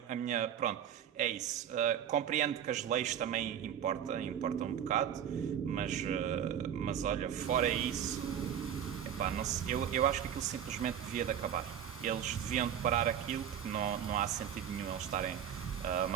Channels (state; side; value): quieter; left; 9.3 dB